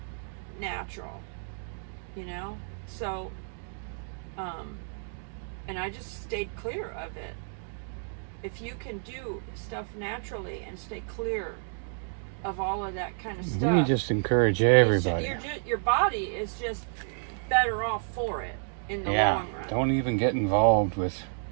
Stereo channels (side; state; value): left; silent; digital silence